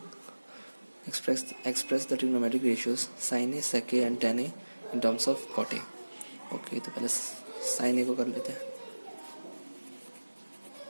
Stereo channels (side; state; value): both; inverted; correlation -1.00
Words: express the trigonometric ratios sine A, sec A and tan A in terms of cot A. Okay, तो पहले साइन ए को कर लेते हैं।